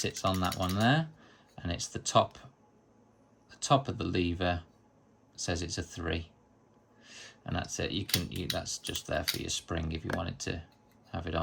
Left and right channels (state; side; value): identical; both; correlation 1.00